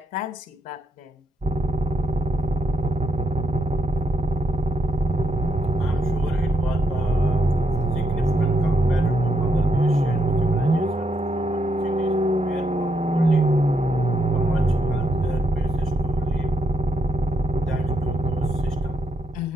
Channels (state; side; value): normal; both; correlation 0.79